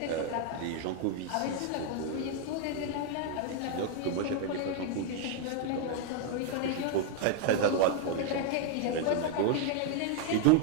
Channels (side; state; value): both; different; correlation 0.00